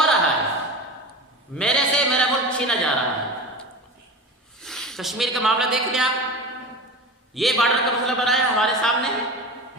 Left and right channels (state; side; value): normal; both; correlation 0.30